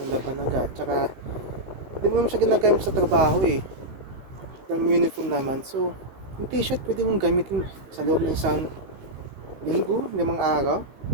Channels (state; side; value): late; left; 15 ms